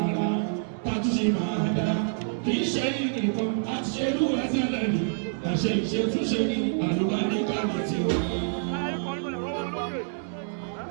tọ́jú máa dá. Kì í ṣe ìnìkan àti ṣe rí wá tẹ́lẹ̀ rí. Àṣẹ ìṣètúnṣe àlùbọ́rí kárò tiwa.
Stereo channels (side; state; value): left; silent; digital silence